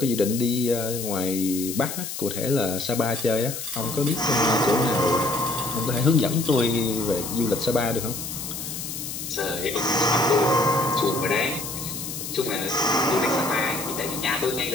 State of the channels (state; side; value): noise; left; hiss, 7 dB below the sound